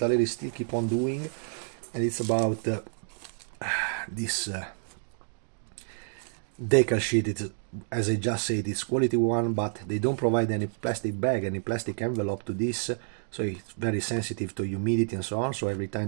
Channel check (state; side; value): silent; left; digital silence